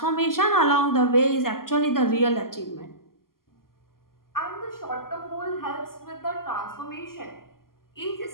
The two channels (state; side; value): late; right; 0.92 ms